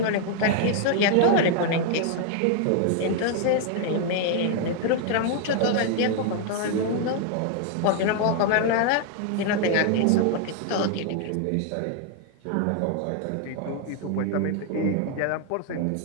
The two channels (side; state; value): both; different; correlation 0.00